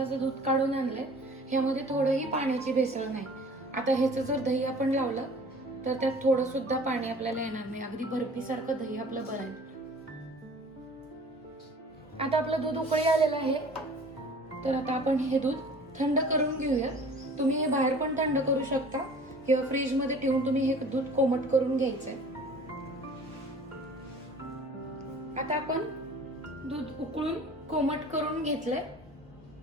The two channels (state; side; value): normal; both; correlation 0.47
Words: दूध काढून आणलंय। ह्यामध्ये थोडंही पाण्याची भेसळ नाही। आता ह्याचं जर दही आपण लावलं तर त्यात थोडं सुद्धा पाणी आपल्याला येणार नाही। अगदी बर्फी सारखं दही आपलं बनेल। आता आपलं दूध उकळी आलेलं आहे। तर आता आपण हे दूध थंड करून घेऊया। तुम्ही हे बाहेर पण थंड करू शकता किंवा फ्रीज मध्ये ठेवून तुम्ही हे दूध कोमट करून घ्यायचंय। आता आपण दूध उकळून कोमट करून घेतलंय।